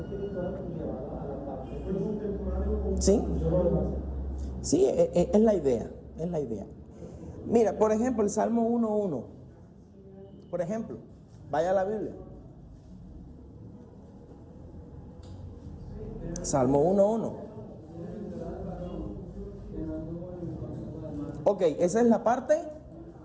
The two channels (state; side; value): identical; both; correlation 1.00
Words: y llevarlo a la parte física. Sí. Sí, es la idea, es la idea. Mira, por ejemplo, el Salmo 1:1. Por ejemplo, vaya a la Biblia. Salmo 1:1. Ok, esa es la parte